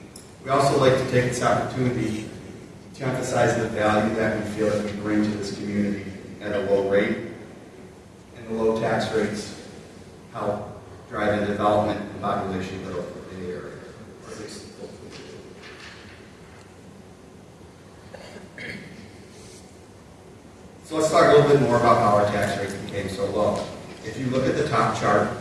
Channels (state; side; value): identical; both; correlation 1.00